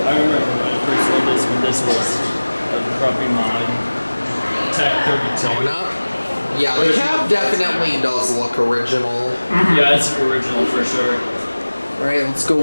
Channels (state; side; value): inverted; both; correlation -1.00